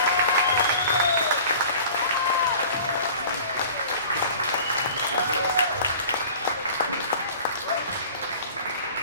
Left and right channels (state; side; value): inverted; both; correlation -0.44